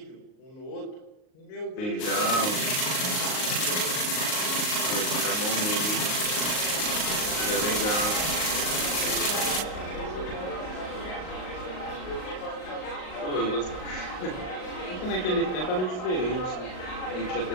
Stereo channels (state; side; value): late; right; 38 ms